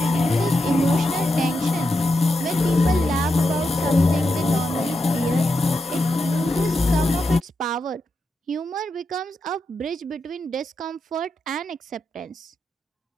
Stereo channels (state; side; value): normal; both; correlation 0.86